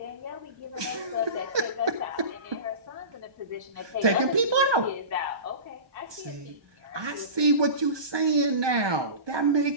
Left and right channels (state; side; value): late; left; 1.2 ms